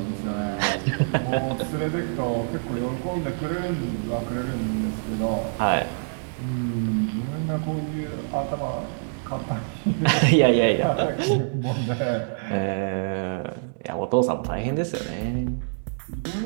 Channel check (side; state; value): left; silent; digital silence